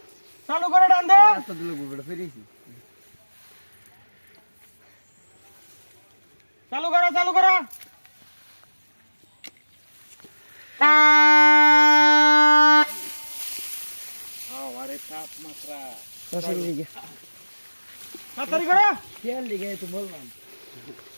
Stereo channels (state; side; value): inverted; both; correlation -1.00